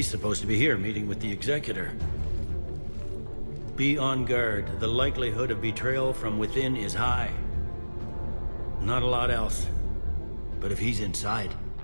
supposed to be here meeting with the Executor. Be on guard. The likelihood of betrayal from within is high. Not a lot else. But if he's inside...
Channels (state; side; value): inverted; both; correlation -1.00